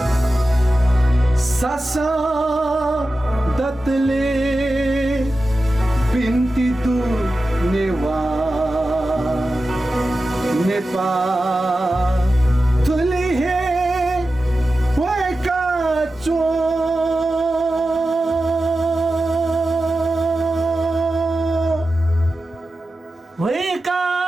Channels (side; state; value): both; normal; correlation 0.93